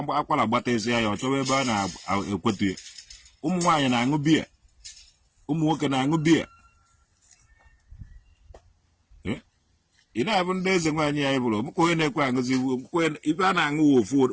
akwara gbata isi ya ọ chọwa ebe a na-ekwetu ya ụmụ nwaanyị na-aṅụ biya ụmụ nwoke na-aṅụ biya ị na-abụ ndị eze nwaanyị ya bụrụ mụka onye na-ekwe aṅụzi ibe a na-aṅụ ofu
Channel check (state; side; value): identical; both; correlation 1.00